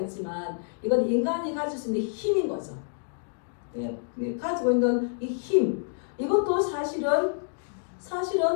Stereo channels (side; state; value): right; silent; digital silence